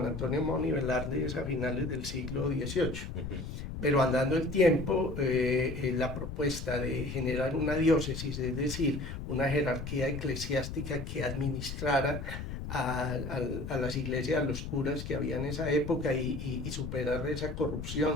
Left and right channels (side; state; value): left; noise; rumble, 7 dB below the sound